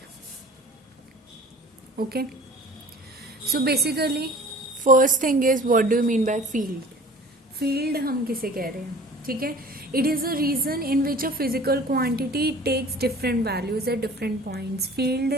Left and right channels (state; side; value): normal; both; correlation 0.45